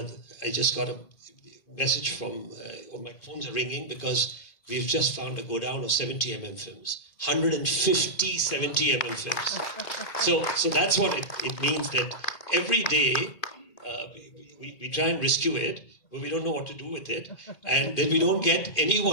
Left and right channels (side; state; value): right; late; 2.0 ms